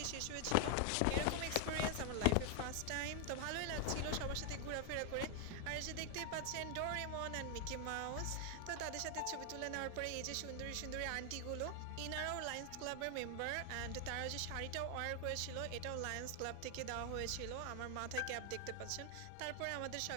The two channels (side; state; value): both; different; correlation 0.00